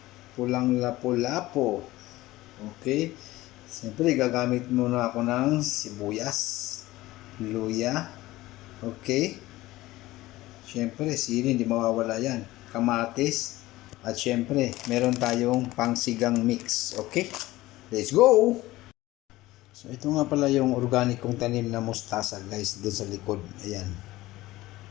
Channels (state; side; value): quieter; right; 17.7 dB